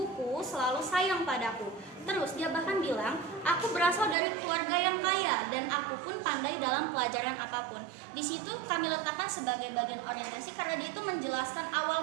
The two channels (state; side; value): drops out; left; at 4.2 s